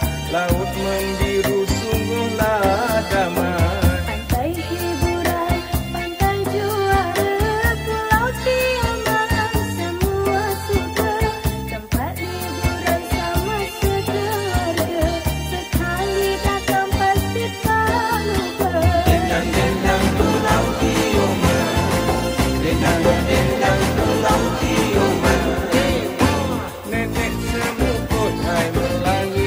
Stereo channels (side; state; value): both; identical; correlation 1.00